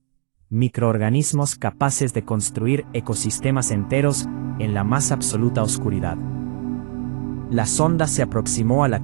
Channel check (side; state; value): left; silent; 61 dB below the other